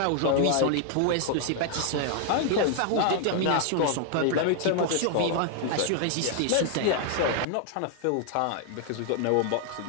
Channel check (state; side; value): different; both; correlation 0.00